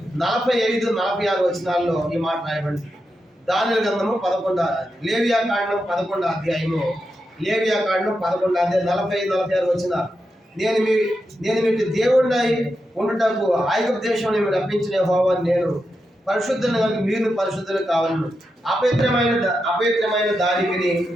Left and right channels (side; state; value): both; normal; correlation 0.87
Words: 45-46 వచనాల్లో ఈ మాట రాయబడింది. దానియేలు గ్రంథము 11 లేవియా కాండం 11వ అధ్యాయము 45-46 వచనాలు. నేను మీకు దేవుడినై ఉండుటకు ఐగుప్తు దేశంలో మీరు రప్పించిన యెహోవాను నేను పరిశుద్ధులను కనుక మీరు పరిశుద్ధులు కావాలను. అపవిత్రమైన దానికిని